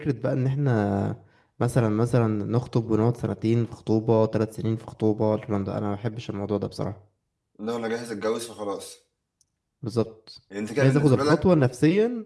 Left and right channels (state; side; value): identical; both; correlation 1.00